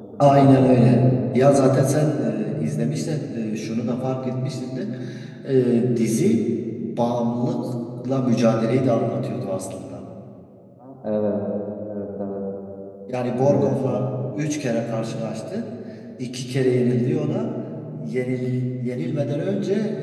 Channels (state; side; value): identical; both; correlation 1.00